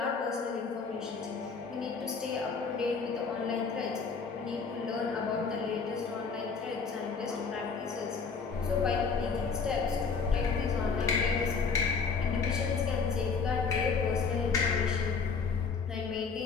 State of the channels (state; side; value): quieter; right; 5.2 dB